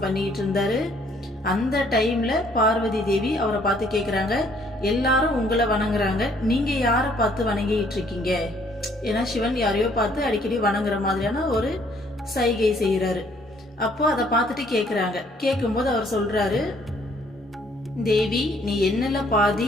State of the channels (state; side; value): normal; both; correlation 0.63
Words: பண்ணிக்கிட்டு இருந்தாரு. அந்த டைம்ல பார்வதி தேவி அவரை பார்த்து கேக்குறாங்க, எல்லாரும் உங்களை வணங்குறாங்க, நீங்க யாரை பார்த்து வணங்கிட்டு இருக்கீங்க? ஏன்னா சிவன் யாரையோ பார்த்து அடிக்கடி வணங்குற மாதிரியான ஒரு சைகை செய்யறாரு. அப்போ அதை பார்த்துட்டு கேக்குறாங்க. கேட்கும்போது அவர் சொல்றாரு, தேவி நீ என்னல